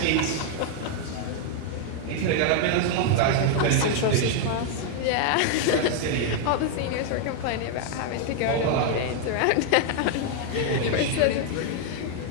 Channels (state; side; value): different; both; correlation 0.00